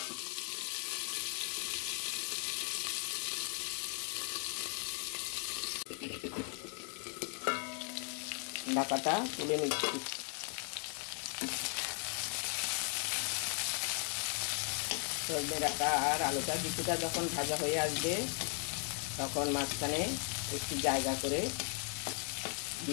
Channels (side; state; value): right; quieter; 38.5 dB